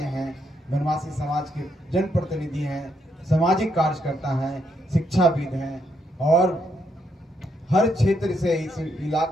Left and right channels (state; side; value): normal; both; correlation 0.77